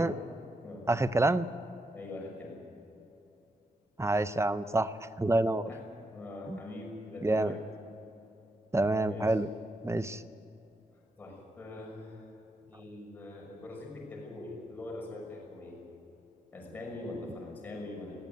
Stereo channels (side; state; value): both; normal; correlation 0.82